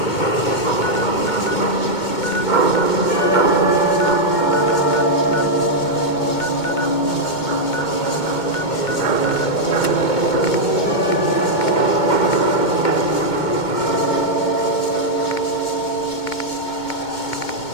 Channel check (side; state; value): right; late; 2.2 ms